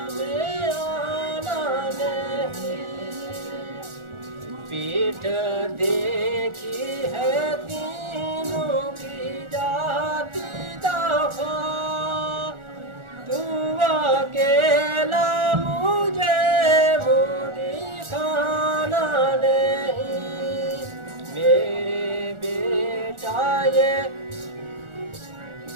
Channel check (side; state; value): left; late; 1.4 ms